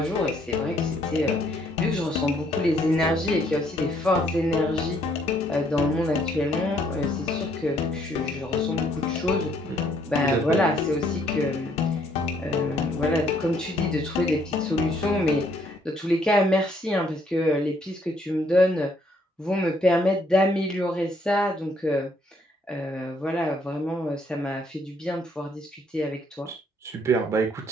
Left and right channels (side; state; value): both; normal; correlation 0.67